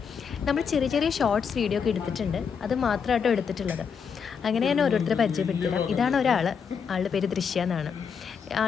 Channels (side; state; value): right; quieter; 6.6 dB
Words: നമ്മൾ ചെറിയ ചെറിയ ഷോർട്സ് വീഡിയോ ഒക്കെ എടുത്തിട്ടുണ്ട്, അത് മാത്രമായിട്ടോ എടുത്തിട്ടുള്ളത്. അങ്ങനെ ഞാൻ ഓരോരുത്തരെ പരിചയപ്പെടുത്തിരാം. ഇതാണ് ഒരാൾ, ആളുടെ പേര് ദൃശ്യ എന്നാണ്.